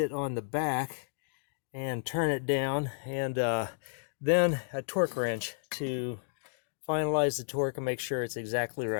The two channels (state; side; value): silent; right; digital silence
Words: on the back and turn it down, and then a torque wrench to finalize the torque and make sure it's exactly